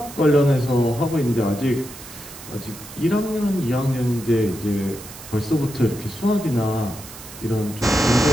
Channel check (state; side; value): noise; right; hiss, 15 dB below the sound